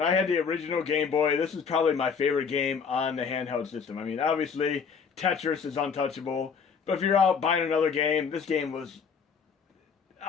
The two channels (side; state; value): right; quieter; 6.1 dB